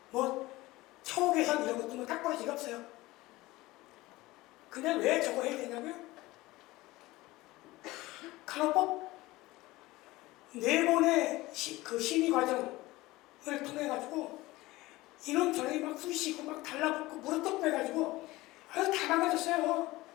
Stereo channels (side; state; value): right; quieter; 19.3 dB